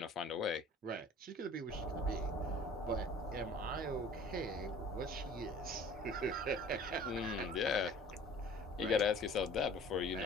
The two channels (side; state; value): both; normal; correlation 0.47